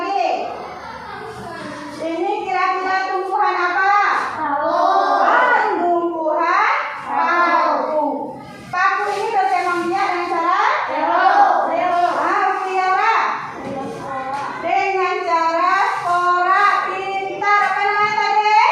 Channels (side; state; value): both; identical; correlation 1.00